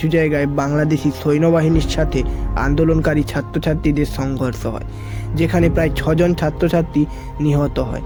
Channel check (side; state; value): both; identical; correlation 1.00